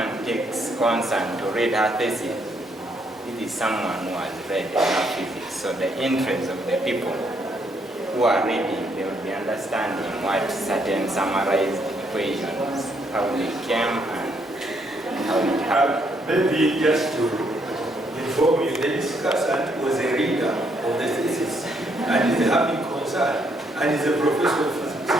takes concern to read her thesis, it is someone who has read enough physics. So the interest of the people who are reading, they will be understanding what certain summarized equations, how they came and how it happened. Maybe just to inform you, the discussant was a reader of the thesis and is having concern and is a professor of physics.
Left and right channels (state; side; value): normal; both; correlation 0.72